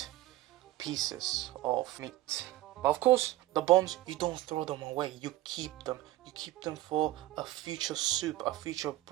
pieces of meat. But of course, the bones, you don't throw them away. You keep them. You keep them for a future soup, a future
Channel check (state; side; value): quieter; left; 16.2 dB